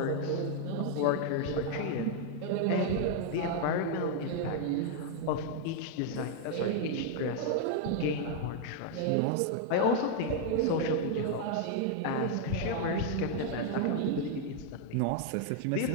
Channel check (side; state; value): both; different; correlation 0.00